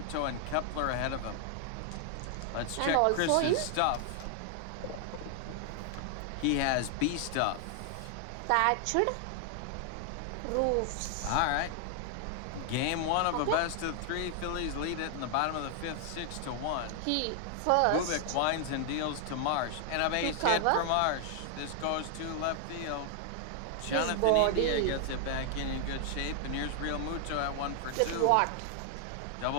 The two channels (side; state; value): both; different; correlation 0.00